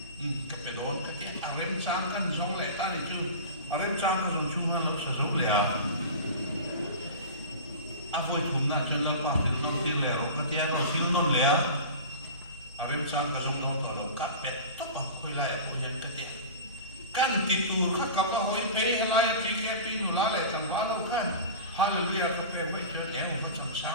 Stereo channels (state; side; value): inverted; both; correlation -0.33